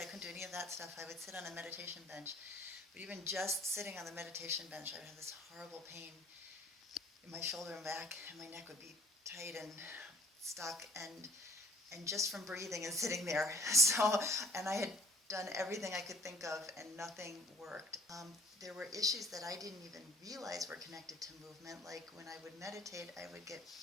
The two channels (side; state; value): both; normal; correlation 0.51